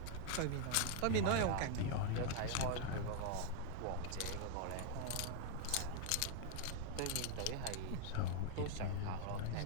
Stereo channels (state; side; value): different; both; correlation 0.00